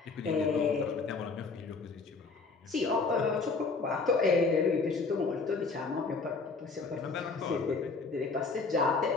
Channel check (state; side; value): quieter; right; 4.3 dB